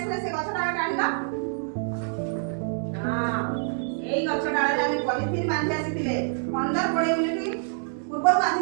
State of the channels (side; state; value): left; silent; digital silence